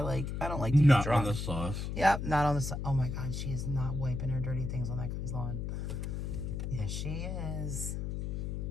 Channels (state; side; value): noise; left; hum, 3 dB below the sound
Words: don't like to be Not drunk. on the sauce. Yep, not on the sauce. Oh my God, she is not wiping her dirty things on that guy's lawn. Yes, she is.